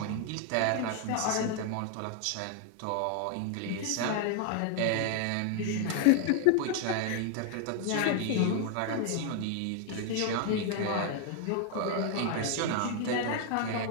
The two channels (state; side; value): different; both; correlation 0.00